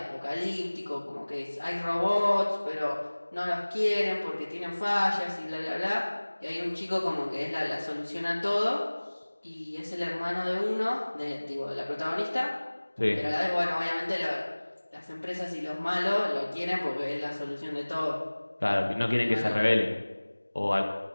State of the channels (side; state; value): both; inverted; correlation -1.00